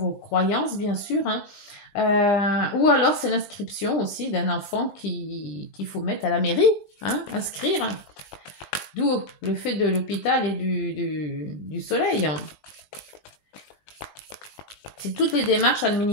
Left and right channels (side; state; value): right; late; 20 ms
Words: croyances, bien sûr, hein. Ou alors c'est l'inscription aussi d'un enfant qu'il faut mettre à la mairie, hein, inscrire. D'où le fait de l'hôpital et du soleil. C'est toutes les démarches